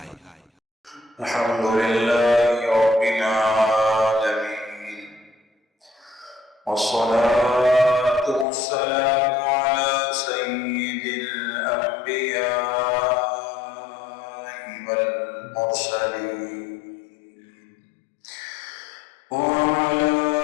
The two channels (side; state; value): right; drops out; at 8.5 s